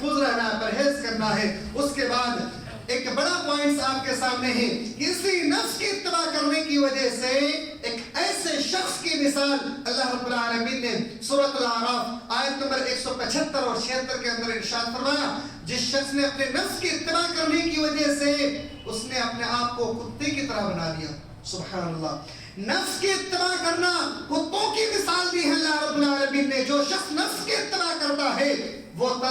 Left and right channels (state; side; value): identical; both; correlation 1.00